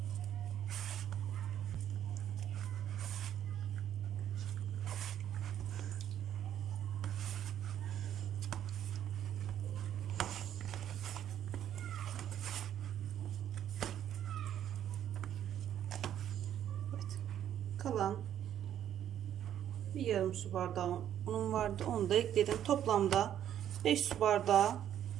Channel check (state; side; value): quieter; left; 10.5 dB